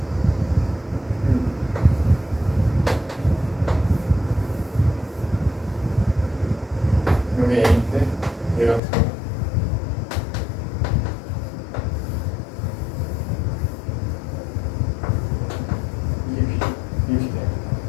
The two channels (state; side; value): drops out; right; at 8.8 s